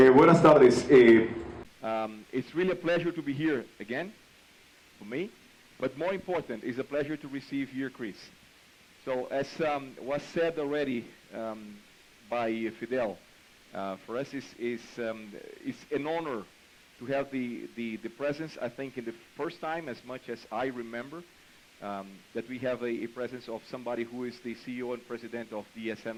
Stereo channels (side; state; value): both; identical; correlation 1.00